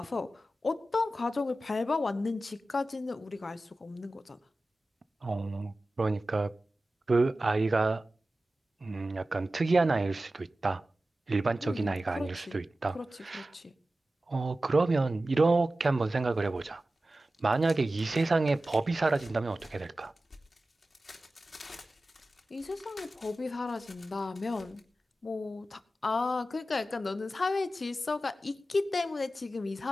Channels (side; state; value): both; normal; correlation 0.95